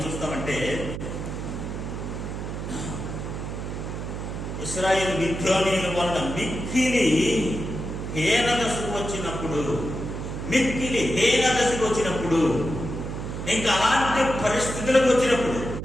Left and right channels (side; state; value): right; noise; hum, 6 dB below the sound